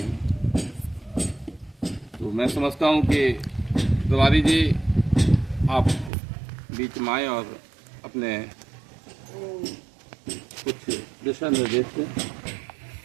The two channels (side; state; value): left; drops out; at 6.1 s